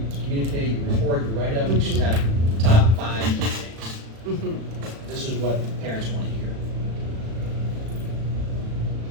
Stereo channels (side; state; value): left; late; 36 ms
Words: communicate, your report, your write-up, you should have top 5 key things. Mhm. This is what parents want to hear.